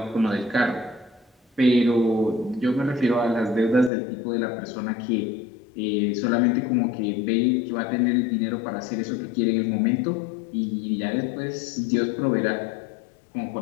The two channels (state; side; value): drops out; right; at 3.9 s